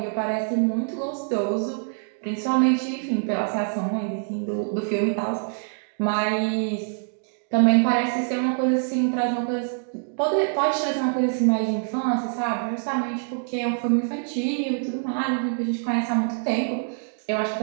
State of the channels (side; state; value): left; silent; digital silence